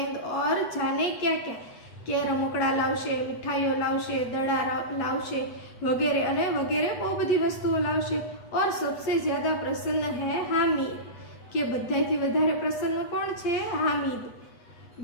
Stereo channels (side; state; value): right; late; 8.2 ms